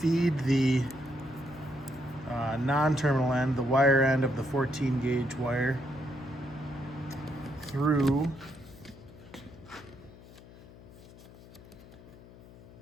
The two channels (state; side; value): noise; left; hum, 20 dB below the sound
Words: the non-terminal end, the wire end of the 14 gauge wire, through